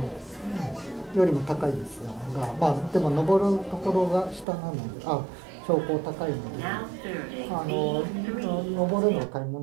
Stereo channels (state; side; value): drops out; left; at 4.5 s